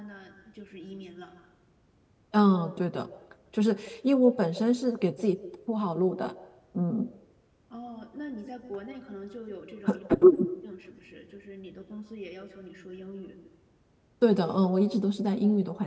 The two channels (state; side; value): identical; both; correlation 1.00